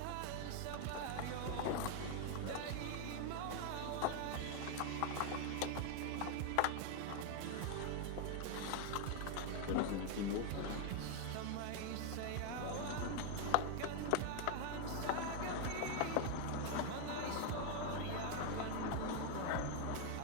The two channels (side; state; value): both; different; correlation 0.00